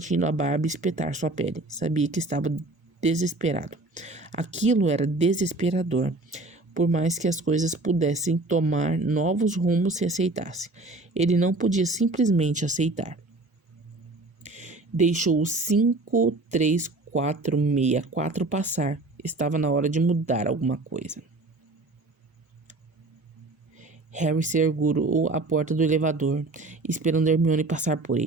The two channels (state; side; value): quieter; left; 3.0 dB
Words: a barba espetar sua pele. Sabia que estava desesperado. Aquilo era desesperador. Por mais que as coisas pudessem tomar novos rumos se aceitasse, ele não podia simplesmente aceitar. Deixou o 53464 passar. Estava na hora de mudar alguma coisa. Harry segurou a porta do elevador, esperando Hermione passar por